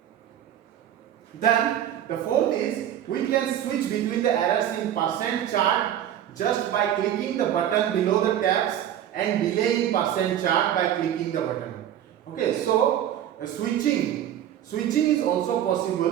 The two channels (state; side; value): quieter; left; 10.9 dB